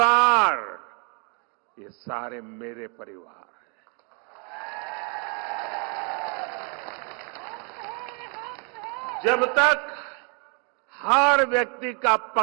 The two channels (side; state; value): left; quieter; 36.5 dB